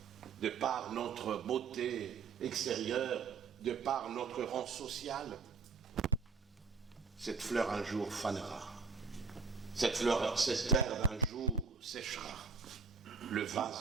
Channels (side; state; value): left; quieter; 5.1 dB